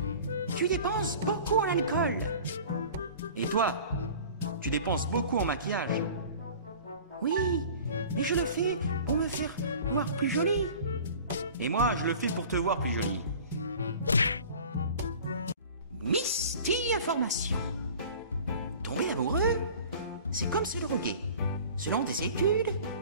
tu dépenses beaucoup en alcool. Et toi, tu dépenses beaucoup en maquillage. Oui, mais je le fais pour me faire voir plus jolie. Et moi, je le fais pour te voir plus jolie. Misty Information. Tomber amoureux, c'est comme se droguer. Selon des études,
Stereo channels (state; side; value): inverted; both; correlation -0.43